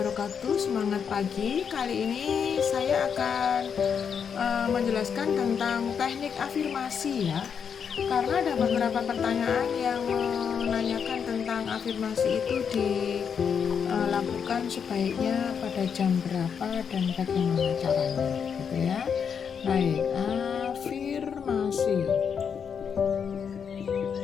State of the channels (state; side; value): quieter; right; 7.0 dB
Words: Semangat pagi. Kali ini saya akan menjelaskan tentang teknik afirmasi ya. Karena ada beberapa pertanyaan yang menanyakan tentang afirmasi itu dilakukan sebaiknya pada jam berapa dan bagaimana caranya, gitu ya. Baik, afirmasi.